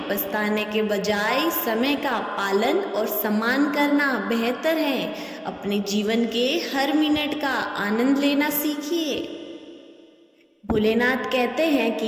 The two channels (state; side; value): identical; both; correlation 1.00